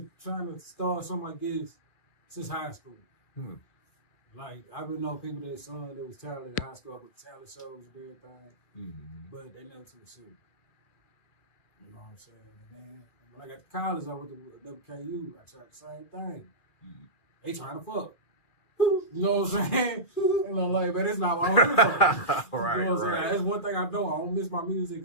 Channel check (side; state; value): right; late; 2.4 ms